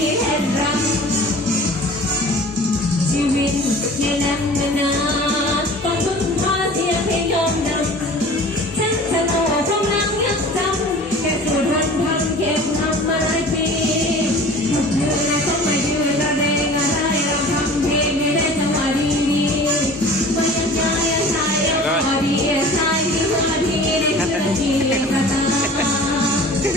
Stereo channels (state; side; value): normal; both; correlation 0.43